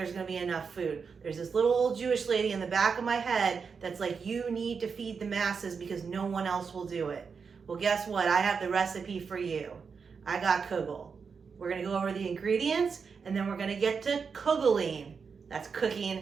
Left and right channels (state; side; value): quieter; left; 5.7 dB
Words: going to be enough food. There's this little old Jewish lady in the back of my head that's like, you need to feed the masses because no one else will do it. Well, guess what? I have the recipe for you. I got kugel. We're going to go over the ingredients and then we're going to get to kugeling. That's